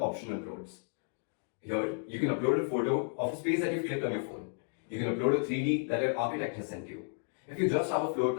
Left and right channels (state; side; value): silent; right; 56 dB below the other